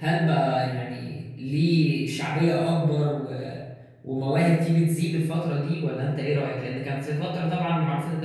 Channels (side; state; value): both; identical; correlation 1.00